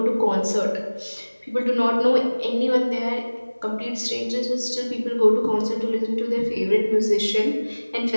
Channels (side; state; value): both; inverted; correlation -1.00